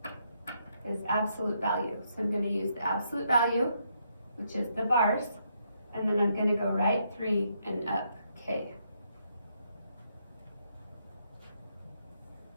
is absolute value. So I'm going to use the absolute value, which is the bars, and then I'm going to go right 3 and up K.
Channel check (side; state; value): both; inverted; correlation -0.76